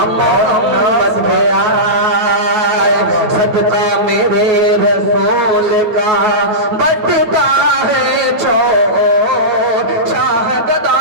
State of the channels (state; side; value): late; left; 9.4 ms